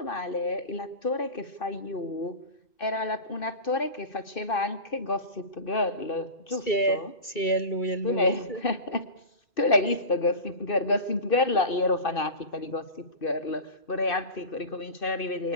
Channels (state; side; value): late; right; 2.6 ms